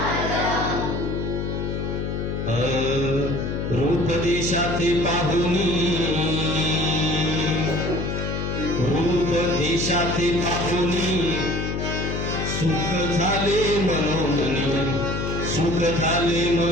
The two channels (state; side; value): noise; left; hum, 2 dB below the sound